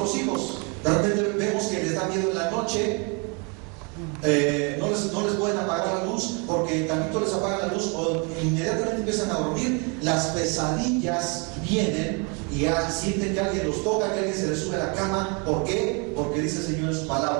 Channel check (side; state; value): left; quieter; 33.1 dB